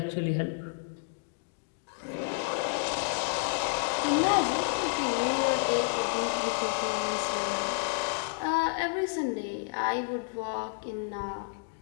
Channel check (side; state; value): right; silent; digital silence